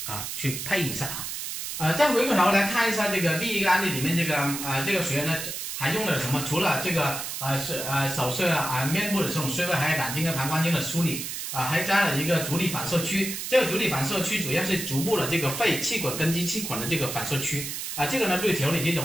配一下再回过头来看一下这个第一个案例里面这个学员呢还用了什么？除了这个手术面部的这种穴位，还有胆经跟膀胱经的梳理还加了一个足底反射区。这个足底反射区主要是足部的这个肺气管、根基气管的这个反射区这个呢对调理这种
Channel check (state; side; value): noise; right; hiss, 5 dB below the sound